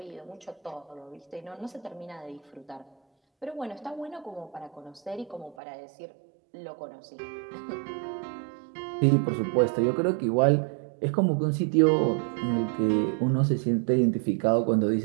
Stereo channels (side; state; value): left; drops out; at 5.6 s